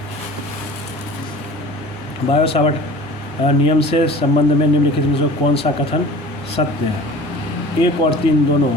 बायो-सावर्ट नियम से संबंध में निम्नलिखित में से कौन सा कथन सत्य है, 1 और 3 दोनों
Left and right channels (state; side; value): normal; both; correlation 0.42